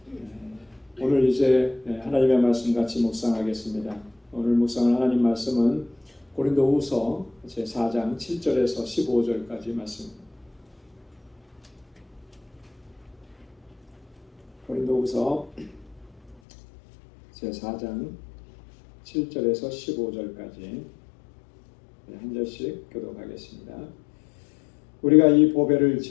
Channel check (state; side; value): drops out; right; at 16.4 s